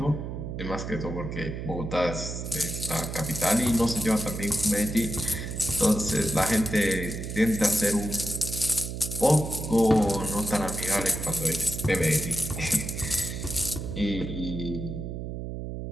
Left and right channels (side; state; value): right; noise; hum, 6 dB below the sound